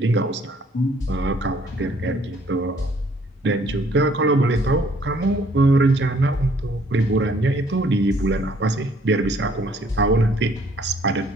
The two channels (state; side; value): normal; both; correlation 0.61